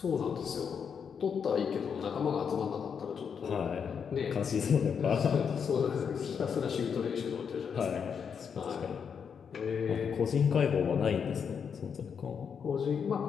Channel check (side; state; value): right; quieter; 6.9 dB